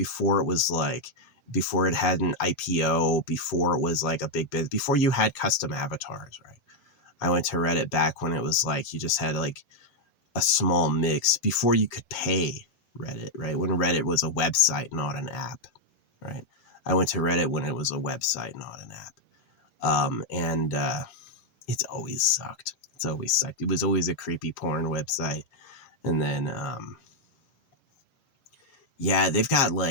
it had an IPO, before it was like a big biz, before you had custom avatars, right? I went to Reddit back when it was like you just had like a small mix, before you could pay Reddit, right? When Reddit was a website, not an app, right? I went to Reddit when it was a website, not an app. And it's always sucked. It's always sucked. It was always a creepy porn website. And then, yeah, they've got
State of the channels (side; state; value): right; late; 7.5 ms